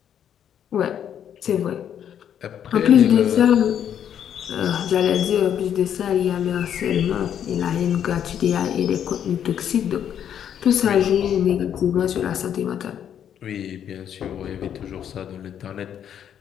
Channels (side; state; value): right; quieter; 9.3 dB